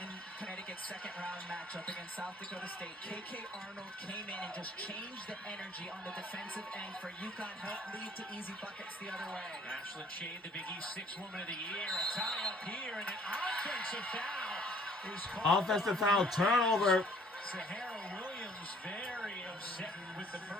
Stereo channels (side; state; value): both; normal; correlation 0.58